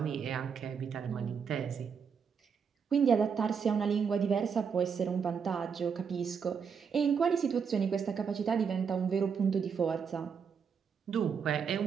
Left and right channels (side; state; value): left; quieter; 6.5 dB